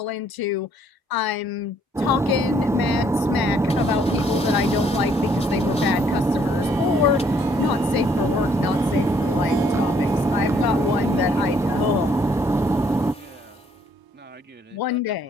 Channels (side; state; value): both; normal; correlation 0.66